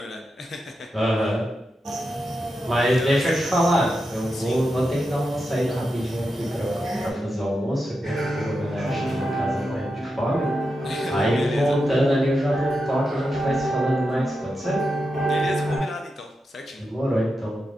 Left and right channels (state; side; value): normal; both; correlation 0.88